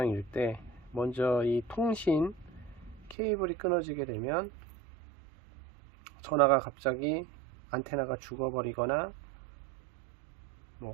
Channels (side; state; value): left; drops out; at 3.2 s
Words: 때 먼저 이 통신 케이블이 끊어지게 되면 전화가 갑자기 안테나가 죽어버리거나